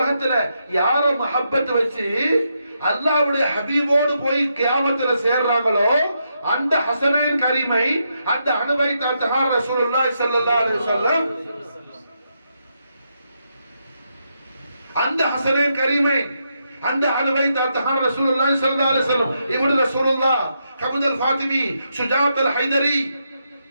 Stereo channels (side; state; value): both; inverted; correlation -0.81